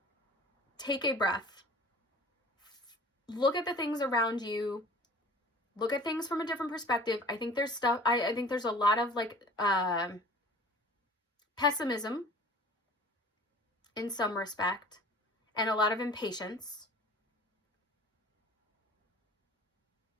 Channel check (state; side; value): normal; both; correlation 0.45